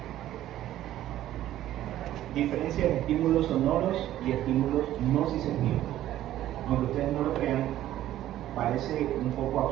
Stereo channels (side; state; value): left; quieter; 13.2 dB